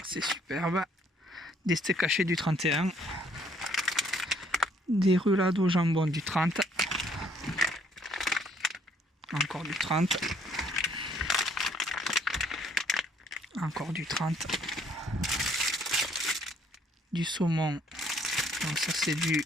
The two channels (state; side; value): normal; both; correlation 0.65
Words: c'est superbe. Des steaks hachés du 31. Des roulades au jambon du 30. Encore du 30. Encore du 30. Du saumon. Donc ça c'est du